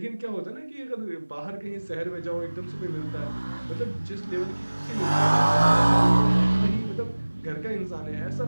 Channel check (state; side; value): inverted; both; correlation -1.00